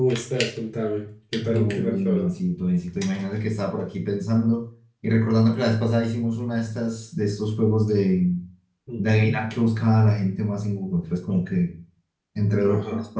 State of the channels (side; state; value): both; identical; correlation 1.00